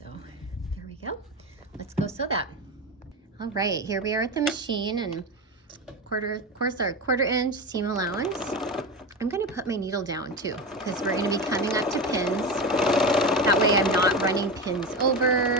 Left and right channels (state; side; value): normal; both; correlation 0.21